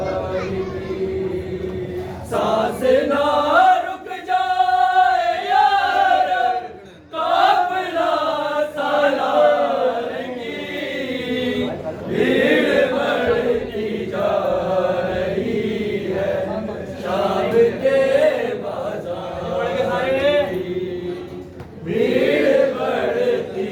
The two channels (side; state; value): both; identical; correlation 1.00